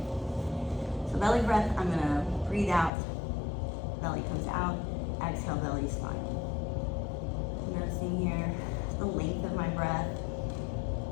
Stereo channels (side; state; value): right; drops out; at 2.9 s